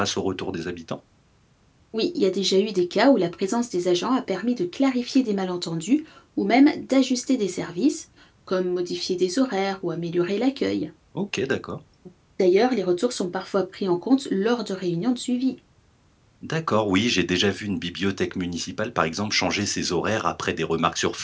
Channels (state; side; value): identical; both; correlation 1.00